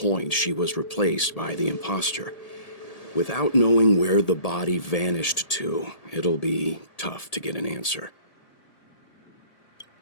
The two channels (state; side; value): late; right; 1.8 ms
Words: she was replaced by the imposter. Without knowing where the body vanished to, it'll be tough to get an answer.